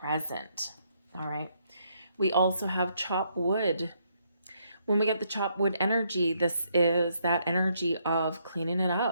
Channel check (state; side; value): inverted; both; correlation -0.74